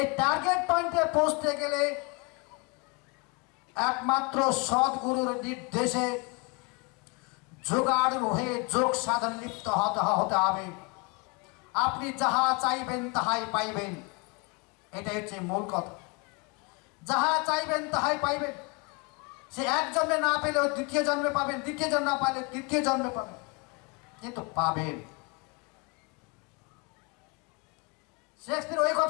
টার্গেট পয়েন্টে পৌঁছতে গেলে একমাত্র সদ্গুরুর নির্দেশে যোগাড় হয়ে যোগ সাধন লিপ্ত হতে হবে। আপনি যাহা চাইবেন তাহাই পাইবেন, এটাই হচ্ছে মূল কথা। যাহা চাইবেন তাহাই পাইবেন। সে এক জন্মে না পেলেও দ্বিতীয় জন্মে পাবেন, দ্বিতীয় জন্ম না পাইলে তৃতীয় জন্মে পাবেন, কিন্তু পাবেন। শেক্সপিয়র ওই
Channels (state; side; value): quieter; right; 29.9 dB